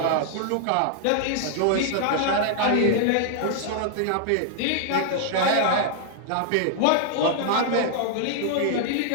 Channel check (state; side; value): different; both; correlation 0.00